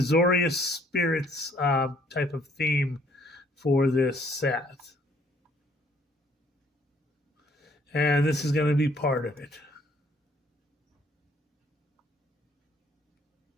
Spirits type of theme for this set. And this is going to be part of it.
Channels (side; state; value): both; normal; correlation 0.63